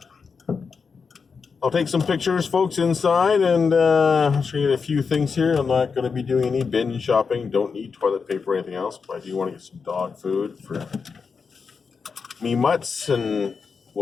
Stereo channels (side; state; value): right; quieter; 5.4 dB